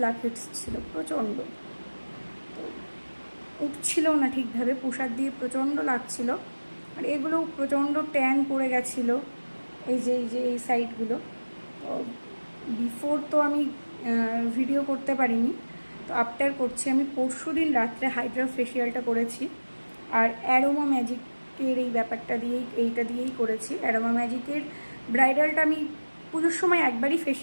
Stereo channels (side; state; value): both; inverted; correlation -1.00